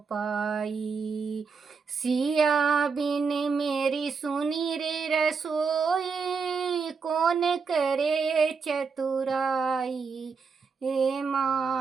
सिया बिन मेरी सुनी रे रसोई, कौन करे चतुराई। हे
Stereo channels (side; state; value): left; quieter; 5.3 dB